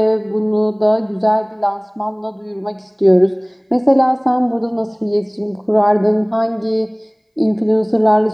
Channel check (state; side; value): identical; both; correlation 1.00